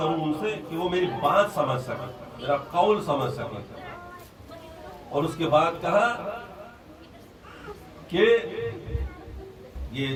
ان سے کہ وہ میری بات سمجھ سکے، میرا قول سمجھ سکے. اور اس کے بعد کہا کہ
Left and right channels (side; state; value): both; identical; correlation 1.00